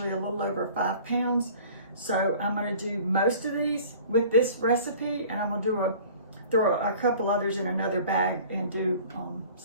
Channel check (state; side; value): inverted; both; correlation -0.46